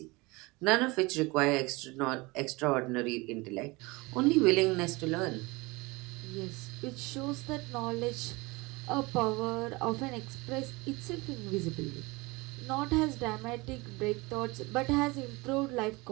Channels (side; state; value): left; quieter; 24.1 dB